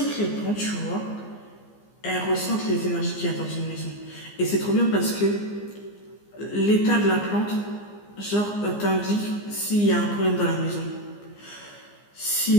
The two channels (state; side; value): late; right; 15 ms